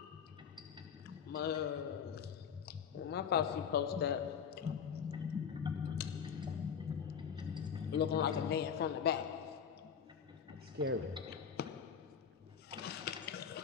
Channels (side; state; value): right; quieter; 7.4 dB